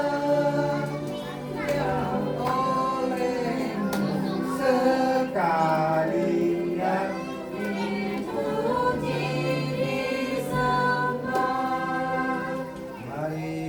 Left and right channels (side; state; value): both; identical; correlation 1.00